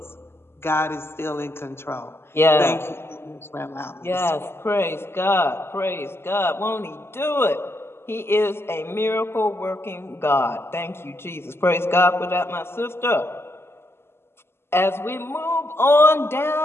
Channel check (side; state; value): right; late; 0.12 ms